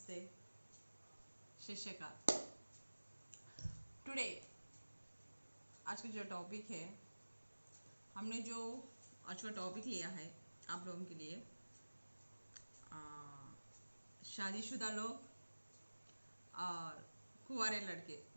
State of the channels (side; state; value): both; inverted; correlation -1.00